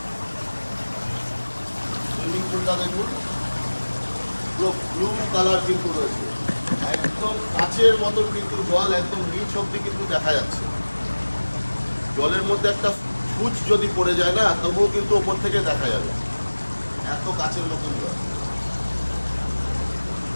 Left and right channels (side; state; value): both; inverted; correlation -1.00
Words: সুইমিং পুলটা দেখুন, পুরো ব্লু কালার কিন্তু রয়েছে, একদম কাচের মতন কিন্তু জল একদম নিচ অব্দি কিন্তু দেখা যাচ্ছে। জলের মধ্যে একটা ফুচ যদি পড়ে যায় না, তবুও কিন্তু ওপর থেকে দেখা যাবে, এত কাচের মতন জল।